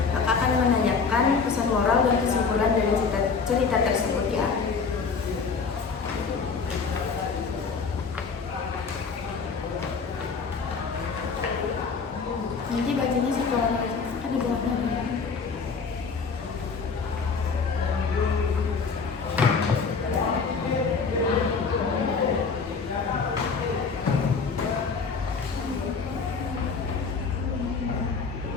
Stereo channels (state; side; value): quieter; right; 5.1 dB